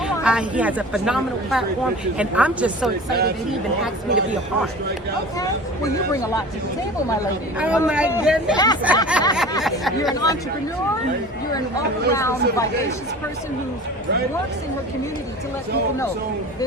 He has a phenomenal platform, and I'm just so excited that he even asked me to be a part. Okay. Well, you bring a lot to the table, my lady. Oh my goodness. You're an entrepreneur. You're an all-around vivacious person who works in her community to let people know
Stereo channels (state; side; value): normal; both; correlation 0.38